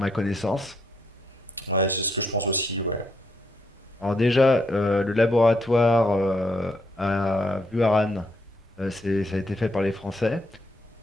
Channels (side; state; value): both; normal; correlation 0.75